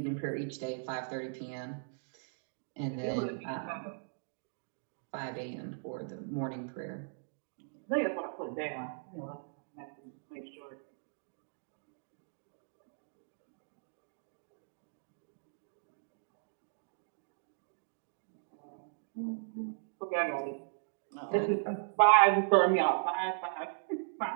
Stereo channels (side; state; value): left; silent; digital silence